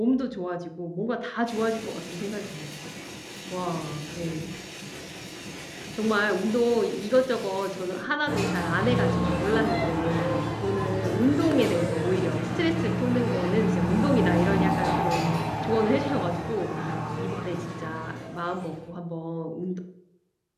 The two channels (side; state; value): both; identical; correlation 1.00